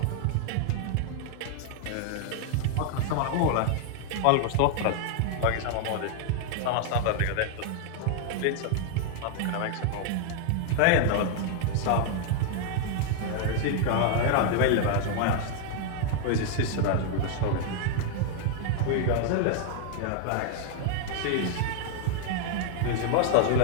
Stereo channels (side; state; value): both; different; correlation 0.00